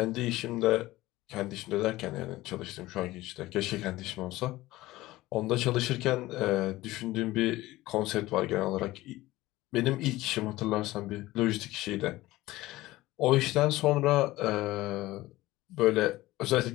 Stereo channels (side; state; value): right; quieter; 17.8 dB